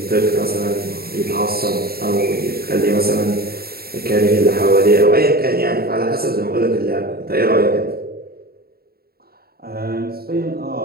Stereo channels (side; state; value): left; late; 0.45 ms